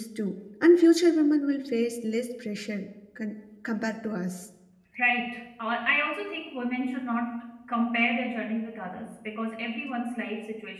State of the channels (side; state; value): both; identical; correlation 1.00